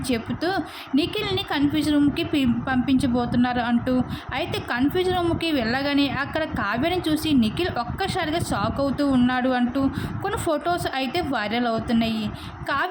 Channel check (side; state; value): both; identical; correlation 1.00